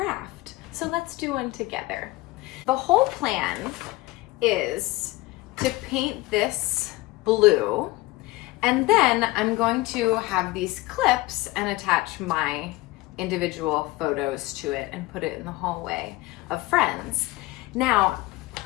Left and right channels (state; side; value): quieter; right; 19.9 dB